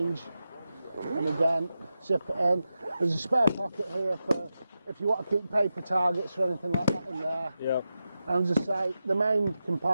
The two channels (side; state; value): both; inverted; correlation -0.91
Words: And again, zip it in. There's a spare pocket here for if you want to keep paper targets or anything like that in there. And as I say, the main